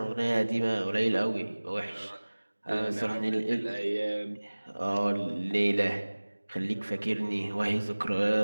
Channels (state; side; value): inverted; both; correlation -1.00